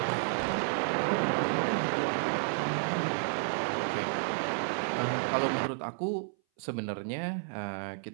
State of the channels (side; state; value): left; silent; 57 dB below the other